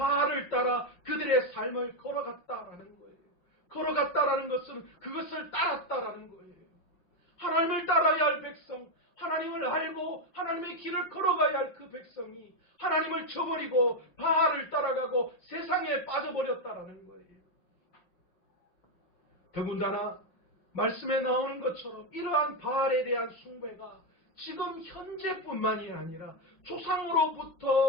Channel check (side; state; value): right; late; 5.7 ms